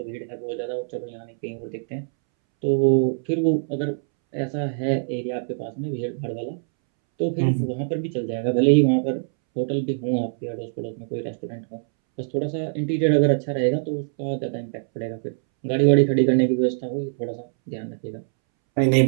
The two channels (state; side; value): silent; left; 63 dB below the other